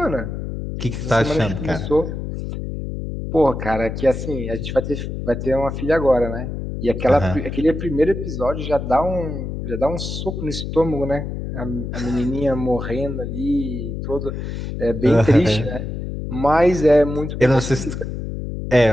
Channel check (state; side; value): noise; left; hum, 5 dB below the sound